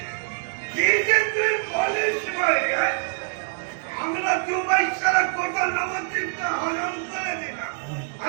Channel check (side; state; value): left; silent; 62 dB below the other